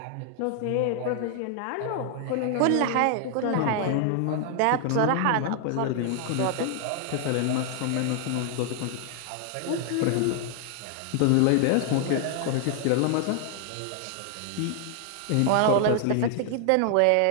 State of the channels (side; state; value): both; different; correlation 0.00